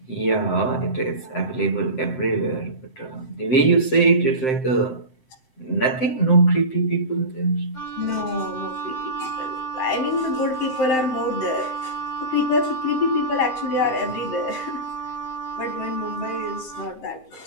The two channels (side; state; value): right; late; 7.7 ms